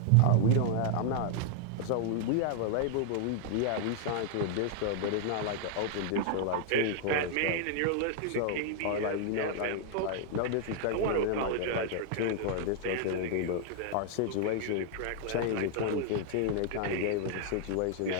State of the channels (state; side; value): different; both; correlation 0.00